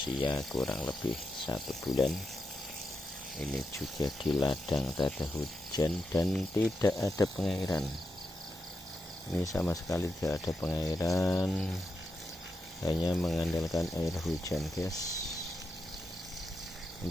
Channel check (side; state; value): both; normal; correlation 0.86